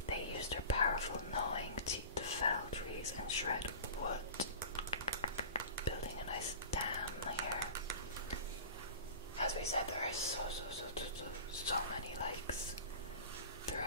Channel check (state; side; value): inverted; both; correlation -0.35